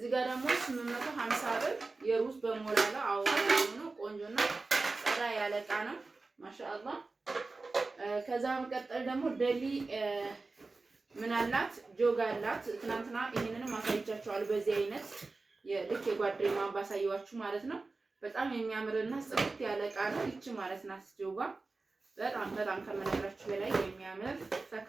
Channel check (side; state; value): left; quieter; 3.6 dB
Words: ጋር ደግሞ 850 ብር የሩዝ በሞላላ አዋራ ነው ቆንጆና ጸዳ ያለ እቃ ነው ማሻአላ። ከዛ መቀጠል ደግሞ ደሊ ምን አላት ጆግ አላት። ትናንትና ይሄንንም አሳይቻችኋለሁ በዚህ አይነት የልክ የጓደኛዋን ባሳየዋችሁ ማለት ነው። በጣም የሚያምርና ጽድት ያለ እቃ ነው ይቺ ማለት ናት ጆጋ። በጣም ከመነግራችሁ በላይ የሚያምር ፈካ